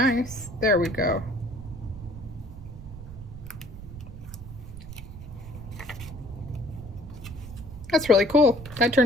There we go. That's really cool. That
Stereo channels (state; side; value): noise; right; rumble, 13 dB below the sound